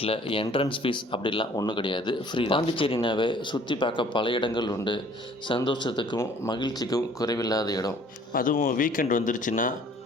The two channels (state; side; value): normal; both; correlation 0.55